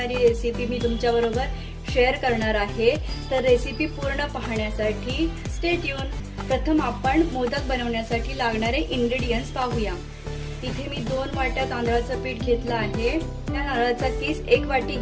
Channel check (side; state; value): both; identical; correlation 1.00